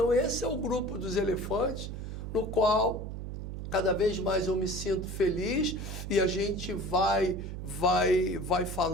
esse é o grupo dos elefantes, no qual cada vez mais eu me sinto feliz e a gente vai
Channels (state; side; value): noise; right; hum, 7 dB below the sound